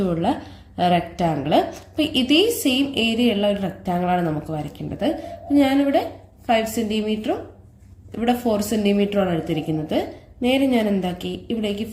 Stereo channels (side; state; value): both; identical; correlation 1.00